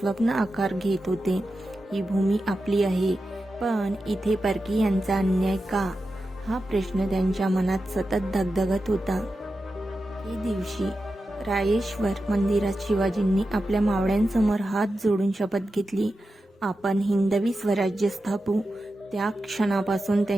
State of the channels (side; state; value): both; normal; correlation 0.91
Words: आकार घेत होते. ही भूमी आपली आहे, पण इथे परकीयांचा अन्याय का, हा प्रश्न त्यांच्या मनात सतत धगधगत होता. एके दिवशी रायेश्वर मंदिरात शिवाजींनी आपल्या मावळ्यांसमोर हात जोडून शपथ घेतली, आपण हिंदवी स्वराज्य स्थापू. त्या क्षणापासून